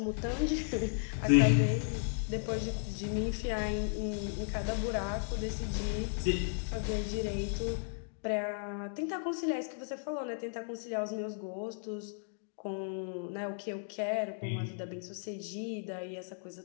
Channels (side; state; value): right; silent; digital silence